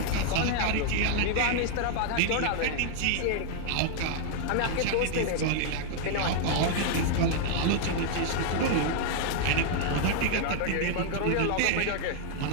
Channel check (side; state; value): both; different; correlation -0.01